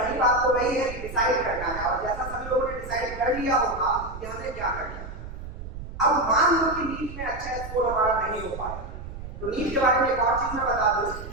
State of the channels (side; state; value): right; noise; rumble, 11 dB below the sound